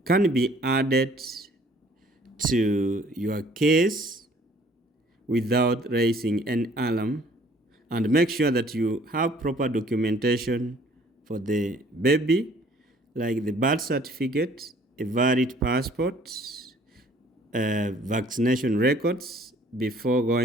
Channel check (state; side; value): normal; both; correlation 0.57